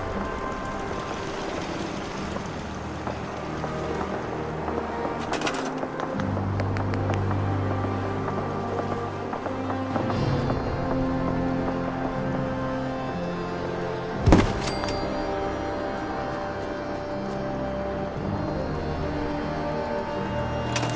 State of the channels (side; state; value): both; identical; correlation 1.00